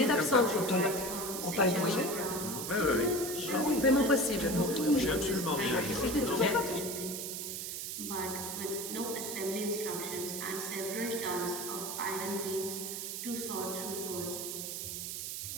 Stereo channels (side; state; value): right; noise; hiss, 5 dB below the sound